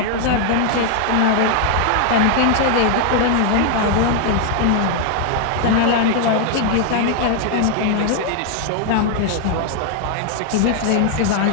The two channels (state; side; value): different; both; correlation 0.00